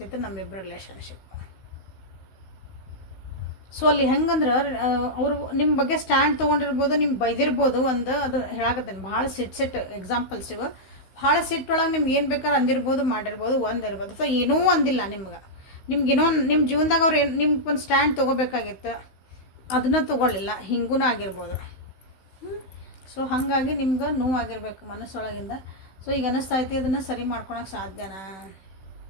ನಮ್ಮಿಬ್ಬರು ರಿಲೇಷನ್ಶಿಪ್. ಸೊ ಅಲ್ಲಿ ಹೆಂಗಂದ್ರೆ ಅವರು ನಿಮ್ಮ ಬಗ್ಗೆ ಸ್ಟ್ಯಾಂಡ್ ತೊಗೊಂಡಿರ್ಬೋದು, ನಿಮ್ಗೆ ಬೈದಿರ್ಬೋದು, ಒಂದು ಅದು ಹೇಳಾಕತ್ತೇನೆ ಭಾಳ ಸಿಟ್ ಎಕ್ಸಾಂಪಲ್ಸ್ ಇವು. ಭಾಳ ಸಿಟ್ಟೊಳಗೆ ನಿಮ್ಗೆ ಏನು ಬೇಕಾದ್ರೆ ಅಂದಿರ್ಬೋದು, ಮಾಡಿರ್ಬೋದು, ಒಂದಿರ್ಬೋದು. ಸೊ ಏನೂ ಅಂದಿಲ್ಲ ನಿಮ್ಗೇನೋ ನಿಮ್ಮ ಜೀವನದಾಗ ಅವ್ರು ನಿಮ್ಗೆ ಒಂದು ಸ್ಟ್ಯಾಂಡ್ ತೊಗೋಬೇಕಾಗಿತ್ತು, ಅದನ್ನ ತೊಗೊಳ್ಳಿಲ್ಲ, ಹಿಂಗೂ ಆಗಿರ್ಬೋದು. ಸೊ ಹಾಗಾಗಿ ನಿಮ್ಗೆ ನೋವಾಗಿರ್ಬೇಕು ಮನಸ್ಸೊಳಗಿಂದ. ಸೊ ಈಗ ಅನ್ನಿಸ್ತಾ ಐತಿ ಅದನ್ನು ಸರಿ ಮಾಡ್ಕೊಳಕ್ಕೆ ಸಾಧ್ಯನಾ,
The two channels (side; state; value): right; late; 16 ms